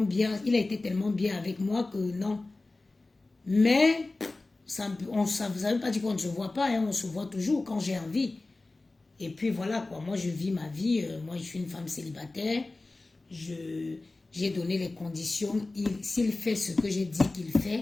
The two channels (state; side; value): quieter; right; 3.2 dB